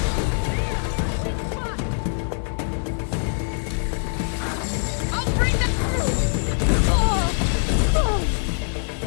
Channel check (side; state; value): right; silent; 63 dB below the other